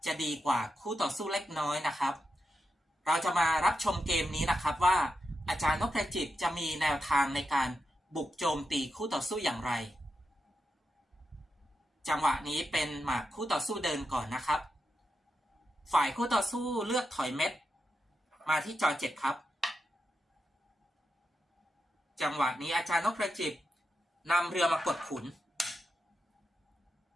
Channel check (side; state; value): both; normal; correlation 0.87